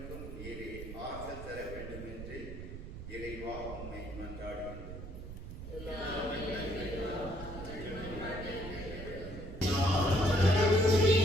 நீரே ஆறுதல் தர வேண்டும் என்று இறைவா உம்மை மன்றாடுகின்றோம்.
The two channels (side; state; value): right; noise; rumble, 10 dB below the sound